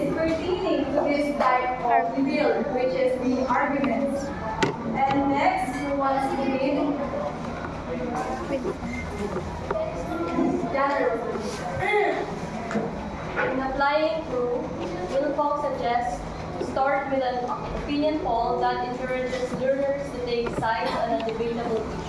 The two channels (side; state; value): both; identical; correlation 1.00